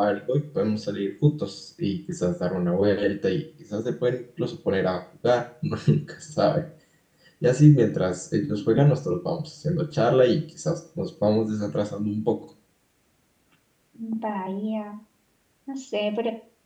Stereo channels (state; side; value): identical; both; correlation 1.00